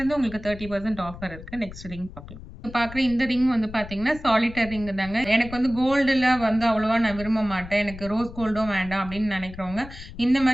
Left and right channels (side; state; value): left; noise; rumble, 14 dB below the sound